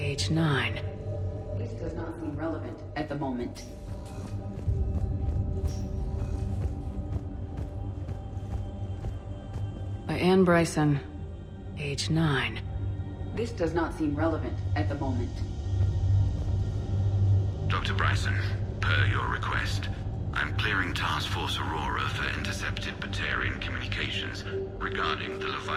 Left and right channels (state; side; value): identical; both; correlation 1.00